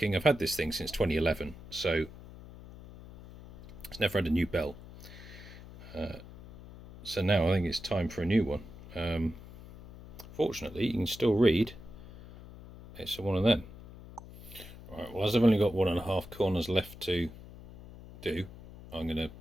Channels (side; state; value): left; noise; hum, 16 dB below the sound